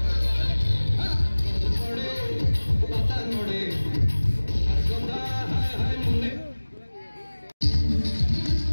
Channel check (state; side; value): inverted; both; correlation -1.00